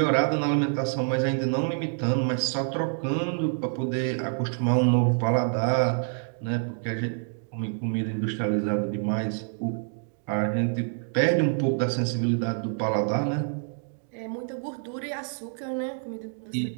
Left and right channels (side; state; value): left; silent; 60 dB below the other